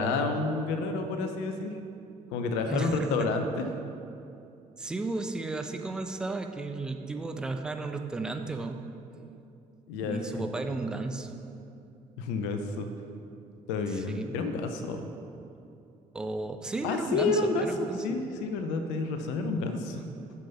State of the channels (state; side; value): normal; both; correlation 0.48